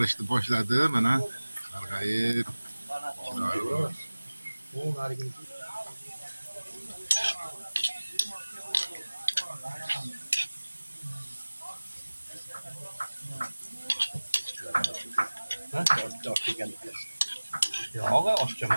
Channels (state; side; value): inverted; both; correlation -1.00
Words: boshladi. Mana sarg'ayib chiroyli bo'ldi. Yog'i